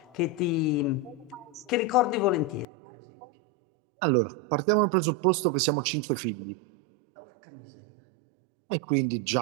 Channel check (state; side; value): drops out; left; at 2.7 s